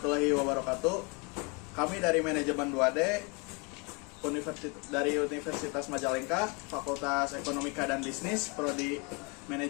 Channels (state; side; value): quieter; right; 30.3 dB